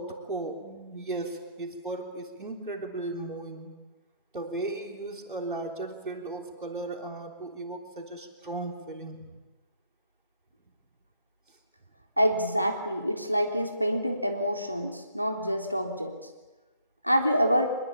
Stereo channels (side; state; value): both; inverted; correlation -0.68